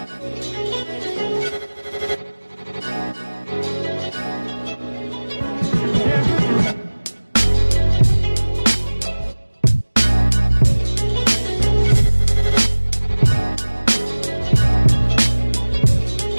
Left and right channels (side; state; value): both; inverted; correlation -1.00